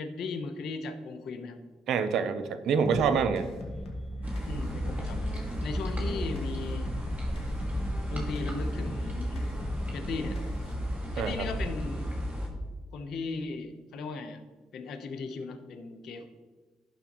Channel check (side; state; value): both; normal; correlation 0.76